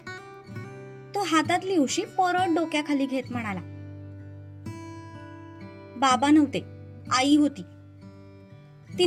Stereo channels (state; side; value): identical; both; correlation 1.00